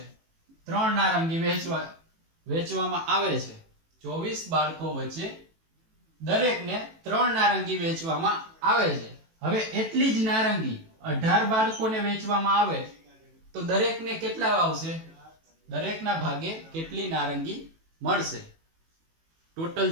3 નારંગી વહેંચવામાં આવે છે. 24 બાળકો વચ્ચે દરેકને 3 નારંગી વહેંચવામાં આવે છે. હવે એટલી જ નારંગી 18 બાળકોને વહેંચવામાં આવે તો દરેકને કેટલા આવશે? દરેકના ભાગે કેટલી નારંગી મળશે? ટોટલ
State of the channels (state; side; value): late; left; 18 ms